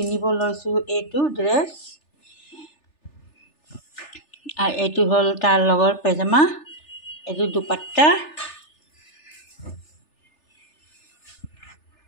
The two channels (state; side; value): late; right; 3.4 ms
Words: লৈছোঁ এইটো ড্ৰেছ, আৰু এইটো হ'ল তাৰ লগৰ পেজামা, এইটো দুপাট্টা।